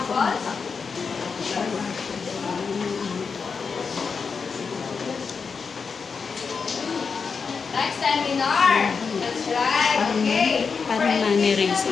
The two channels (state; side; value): quieter; right; 5.4 dB